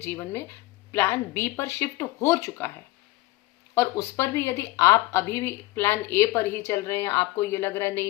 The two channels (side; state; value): right; quieter; 19.1 dB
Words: में प्लान बी पर शिफ्ट हो चुका है, और उस पर भी यदि आप अभी भी प्लान ए पर ही चल रहे हैं, आपको ये लग रहा है